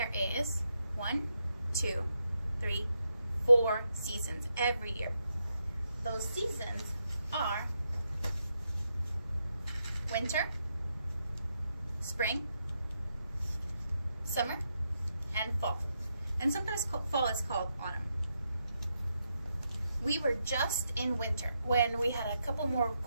is 1, 2, 3, 4 seasons every year. Those seasons are winter, spring, summer, and fall. And sometimes fall is called autumn. We were just in winter when we had a couple more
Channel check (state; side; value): inverted; both; correlation -0.82